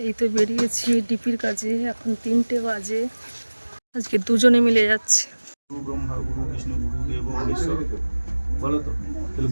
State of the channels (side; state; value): both; inverted; correlation -1.00